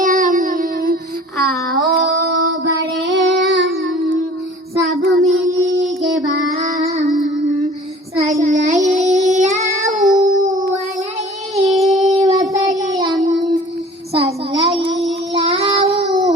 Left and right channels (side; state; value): both; normal; correlation 0.47